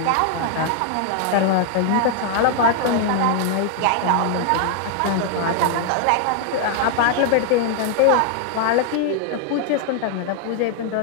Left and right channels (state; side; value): different; both; correlation 0.00